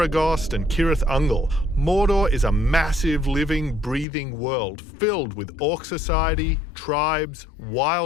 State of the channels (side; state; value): right; drops out; at 4.0 s